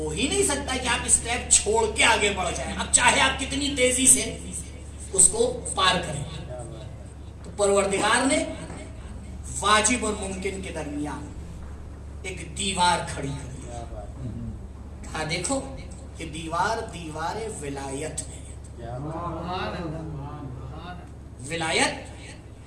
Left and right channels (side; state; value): both; identical; correlation 1.00